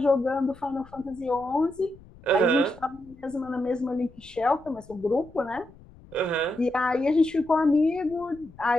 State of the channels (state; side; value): noise; left; rumble, 23 dB below the sound